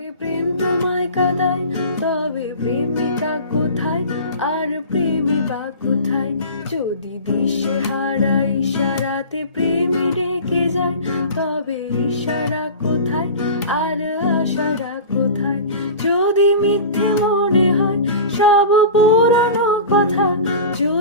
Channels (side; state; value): both; inverted; correlation -0.34